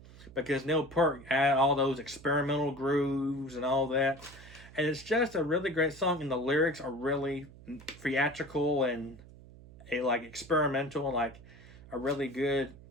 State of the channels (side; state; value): right; noise; hum, 20 dB below the sound